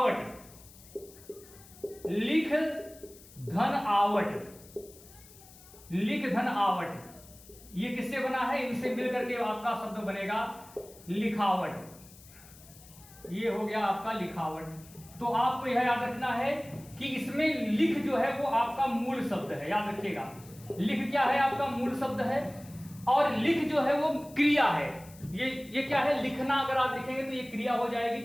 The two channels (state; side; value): noise; left; hiss, 22 dB below the sound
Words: धन आवट, ये किससे बना है? इनसे मिलकर के आपका शब्द बनेगा लिखावट। ये हो गया आपका लिखावट। तो आपको यह याद रखना है कि इसमें लिख जो है वो आपका मूल शब्द है। याद रखिएगा लिख क्या है? आपका मूल शब्द है। और लिख जो है वो क्रिया है। ये क्या है? लिखना। अगर आप लिखेंगे तो ये क्रिया हो जाएगी,